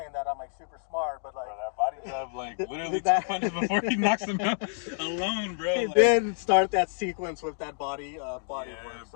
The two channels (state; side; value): silent; right; digital silence